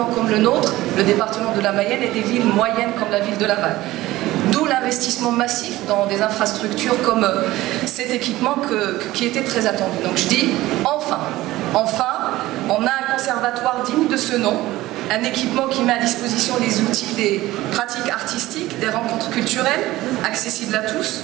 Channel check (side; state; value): left; quieter; 17.1 dB